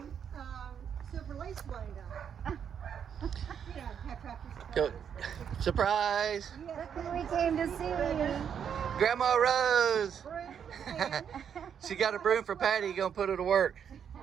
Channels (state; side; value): quieter; left; 8.0 dB